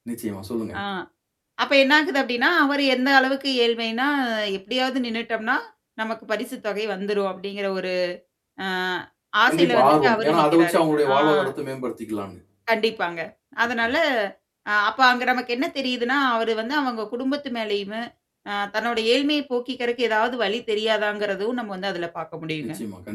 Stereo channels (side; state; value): both; identical; correlation 1.00